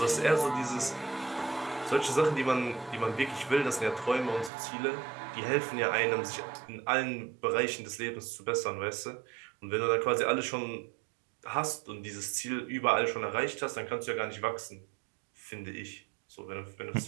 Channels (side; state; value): left; drops out; at 4.5 s